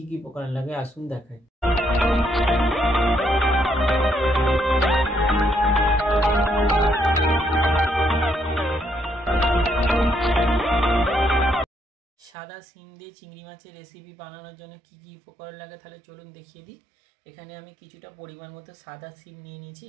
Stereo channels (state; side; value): drops out; left; at 12.3 s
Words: কী উপকরণ লাগে আসুন দেখাই। সাদা সিম দিয়ে চিংড়ি মাছের রেসিপি বানানোর জন্য কী কী উপকরণ লাগে তাহলে চলুন দেখিয়ে দিই। এখানে আমি কিছুটা পরিমাণ মতো সাদা সিম নিয়ে নিয়েছি,